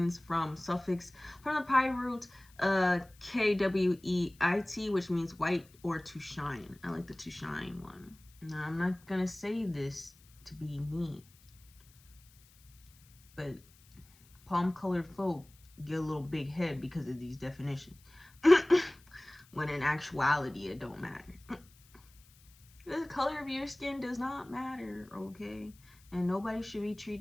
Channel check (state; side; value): noise; left; hiss, 28 dB below the sound